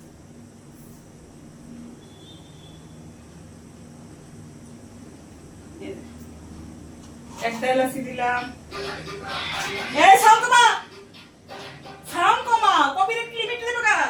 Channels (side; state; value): both; identical; correlation 1.00